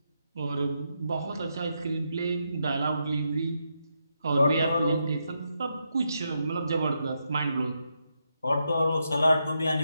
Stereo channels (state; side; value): inverted; both; correlation -0.82